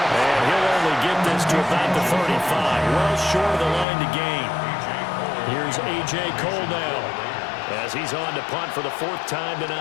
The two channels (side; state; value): right; drops out; at 3.9 s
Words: And he'll only get this to about the 35, well short of the line to gain. Here's A.J. Cole now, as he's on to punt for the 4th time